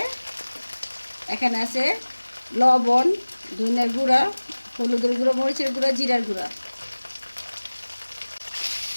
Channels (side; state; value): both; inverted; correlation -1.00